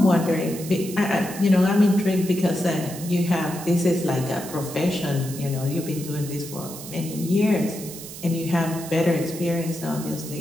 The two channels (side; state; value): right; noise; hiss, 12 dB below the sound